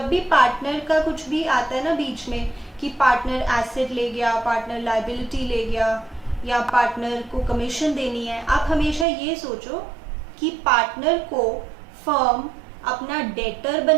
भी पार्टनर का कुछ भी आता है ना बीच में कि पार्टनर एसेट ले गया, पार्टनर लायबिलिटी ले गया, या पार्टनर को कमीशन देनी है, आप हमेशा ये सोचो कि पार्टनर को फर्म अपना डेटर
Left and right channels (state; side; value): drops out; left; at 9.1 s